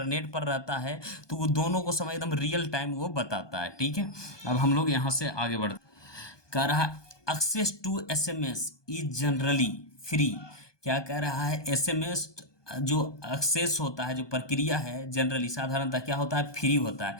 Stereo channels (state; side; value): late; right; 1.2 ms